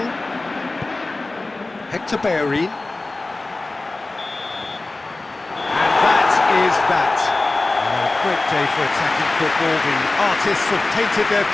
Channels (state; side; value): quieter; right; 3.1 dB